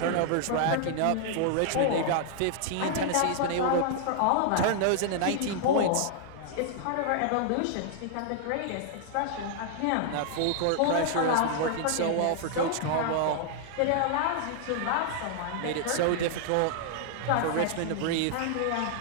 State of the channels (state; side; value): different; both; correlation -0.01